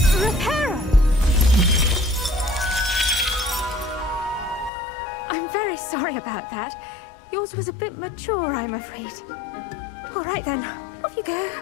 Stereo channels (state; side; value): drops out; right; at 4.7 s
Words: Reparo! I'm very sorry about that. Yours was a bit mature, I'm afraid. All right then, off you go.